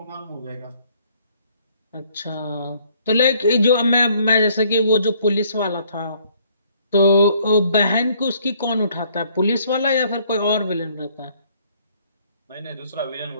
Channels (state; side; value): inverted; both; correlation -0.63